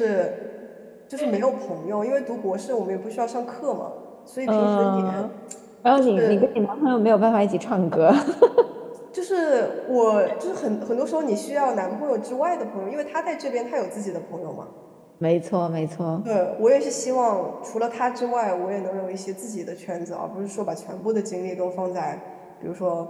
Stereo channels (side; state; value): both; identical; correlation 1.00